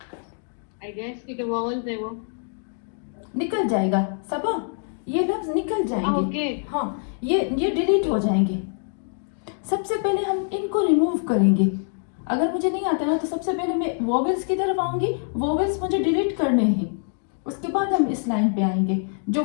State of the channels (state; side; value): silent; right; 57 dB below the other